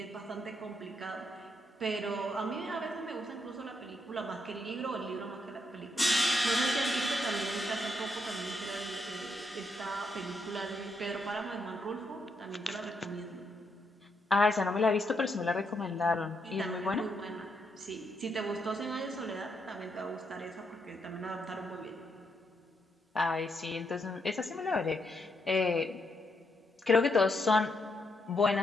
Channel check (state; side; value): normal; both; correlation 0.78